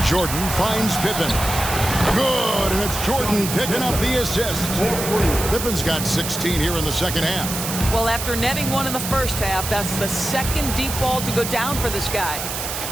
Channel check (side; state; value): right; noise; hiss, 5 dB below the sound